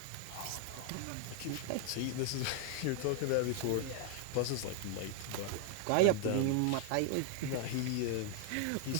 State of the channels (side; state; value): both; different; correlation 0.00